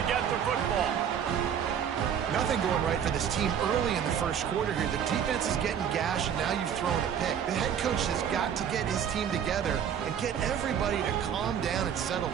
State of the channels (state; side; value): quieter; left; 8.5 dB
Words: get the football. Nothing going right for this team early in the first quarter here. The defense is getting gashed, and now you've thrown a pick. The head coach has got to get his team together and get everybody to calm down and settle